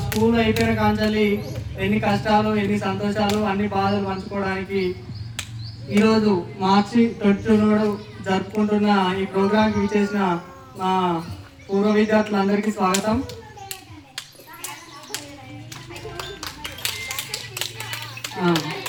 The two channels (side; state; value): both; identical; correlation 1.00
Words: స్కూల్ అయిపోయిన కాంచాలి ఎన్ని కష్టాలు ఎన్ని సంతోషాలు అన్ని బాధలు పంచుకోవడానికి ఈరోజు మార్చి 22 జరుపుకుంటున్న ఈ ప్రోగ్రాంకి విచ్చేసిన మా పూర్వ విద్యార్థులందరికీ స్వాగతం.